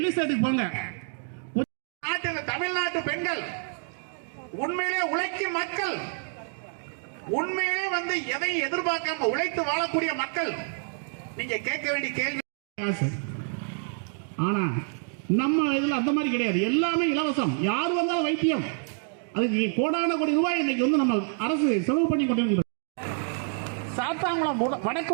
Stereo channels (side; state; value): left; silent; 57 dB below the other